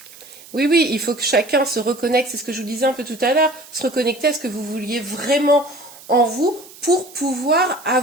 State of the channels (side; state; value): right; noise; hiss, 20 dB below the sound